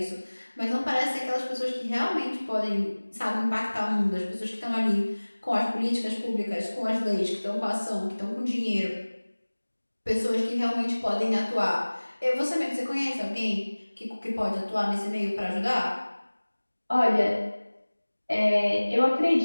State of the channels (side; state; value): both; inverted; correlation -1.00